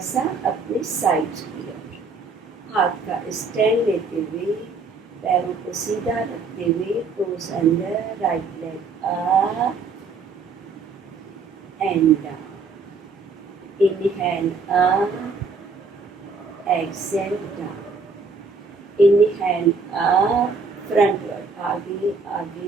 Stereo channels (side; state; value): left; quieter; 4.2 dB